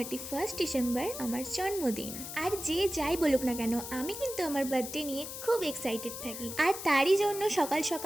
ডিসেম্বর আমার জন্মদিন। আর যে যাই বলুক না কেন, আমি কিন্তু আমার বার্থডে নিয়ে খুব এক্সাইটেড থাকি। আর তারই জন্য সকাল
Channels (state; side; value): noise; left; hiss, 8 dB below the sound